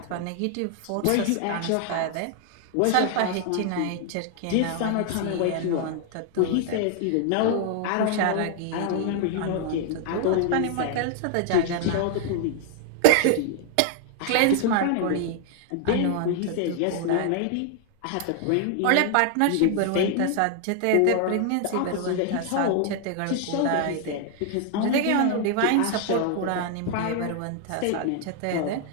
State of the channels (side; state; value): both; different; correlation 0.00